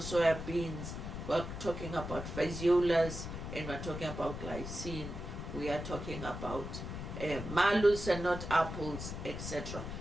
soya beans. We're talking about phaseolas, and we're talking about glycine. We are talking about malus and not apples, etc.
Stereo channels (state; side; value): noise; left; rumble, 7 dB below the sound